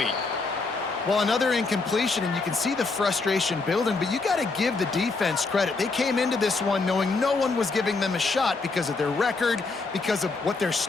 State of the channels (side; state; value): right; quieter; 3.9 dB